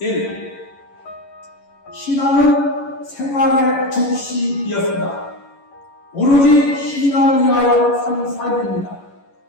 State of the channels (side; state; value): right; late; 11 ms